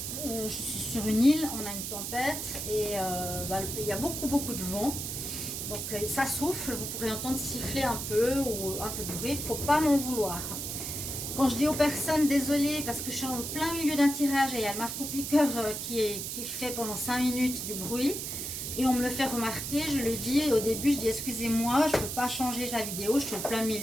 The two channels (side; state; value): right; noise; hiss, 5 dB below the sound